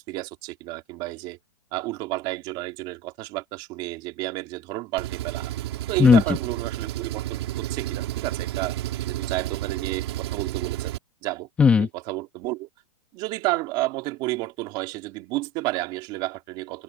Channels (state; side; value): normal; both; correlation 0.42